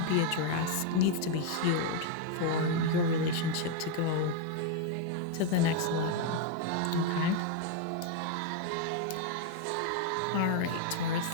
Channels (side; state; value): both; different; correlation 0.01